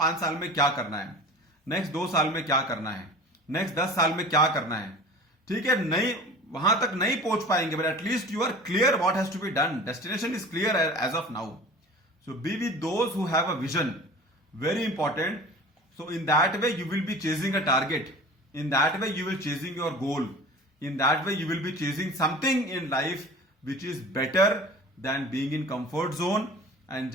साल में क्या करना है, next 2 साल में क्या करना है, next 10 साल में क्या करना है. ठीक है, नहीं वहां तक नहीं पहुंच पाएंगे, but at least you are clear what has to be done. Destination is clear as of now. So be with those who have a vision. Very important. So in that way you will be chasing a target. In that way you will chasing your goal. In that way you will be chasing something in life which is better than being in comfort zone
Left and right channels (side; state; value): both; normal; correlation 0.40